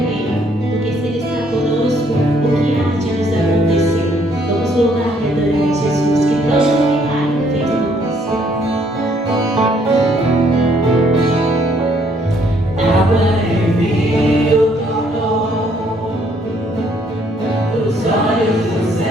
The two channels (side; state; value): both; normal; correlation 0.66